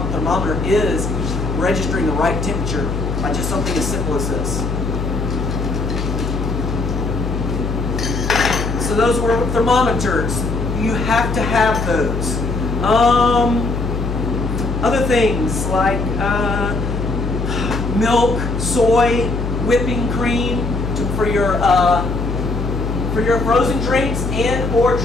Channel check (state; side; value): noise; left; hum, 3 dB below the sound